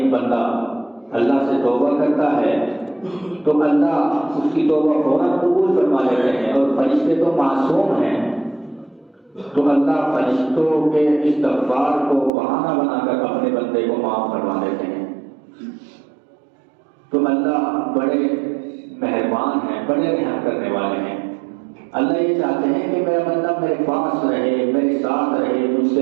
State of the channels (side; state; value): left; drops out; at 12.3 s